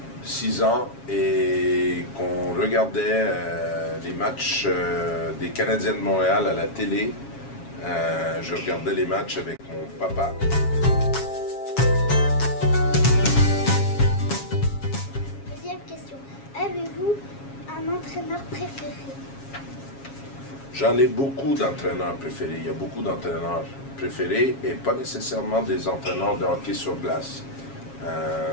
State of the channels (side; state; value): right; late; 7.3 ms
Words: 6 ans, et qu'on regardait les matchs des Canadiens de Montréal à la télé. Je regardais les matchs avec mon papa. Deuxième question. Avez-vous un entraîneur préféré? J'en ai beaucoup d'entraîneurs préférés. Il y a beaucoup d'entraîneurs préférés et pas nécessairement des entraîneurs de hockey sur glace.